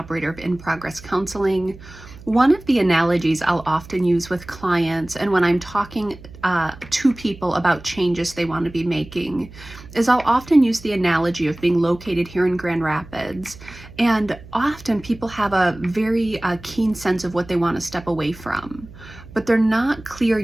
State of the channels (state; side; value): noise; right; hum, 18 dB below the sound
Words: of In Progress Counseling. One of the analogies I'll often use with clients and when I'm talking to people about changes they want to be making is I'll often use the analogy of being located here in Grand Rapids. And often people have a very keen sense of what they want to step away from, but they're not clear